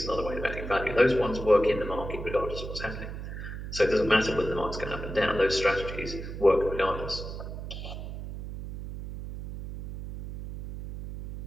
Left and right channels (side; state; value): right; noise; hum, 8 dB below the sound